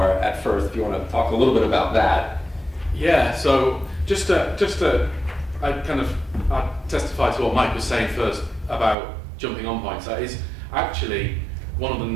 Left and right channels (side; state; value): left; drops out; at 9.0 s